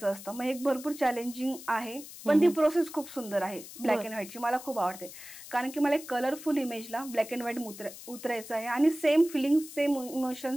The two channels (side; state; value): left; noise; hiss, 15 dB below the sound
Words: असतं. मग एक भरपूर चॅलेंजिंग आहे, पण ती प्रोसेस खूप सुंदर आहे ब्लॅक अँड व्हाईटची, मला खूप आवडते, कारण की मला एक कलरफुल इमेजला ब्लॅक अँड व्हाईट उतरायचं आहे आणि सेम फिलिंग, सेम